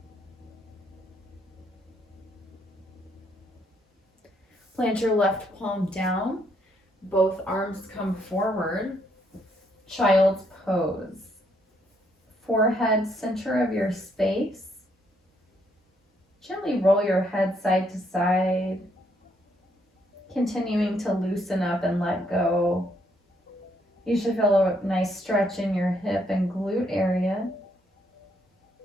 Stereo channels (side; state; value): both; normal; correlation 0.72